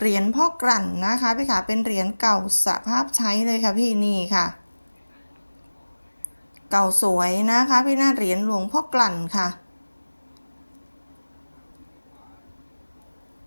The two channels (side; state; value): both; inverted; correlation -1.00